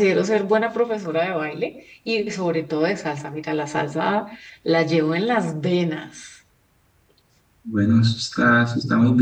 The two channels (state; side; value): identical; both; correlation 1.00